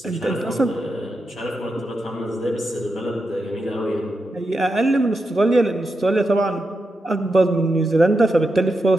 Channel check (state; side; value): normal; both; correlation 0.87